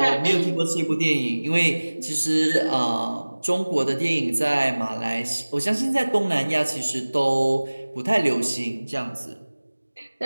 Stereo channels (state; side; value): inverted; both; correlation -1.00